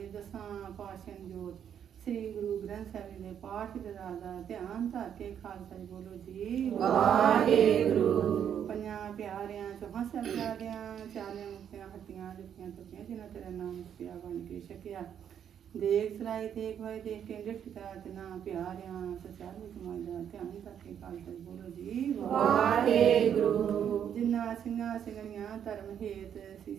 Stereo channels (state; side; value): quieter; left; 8.9 dB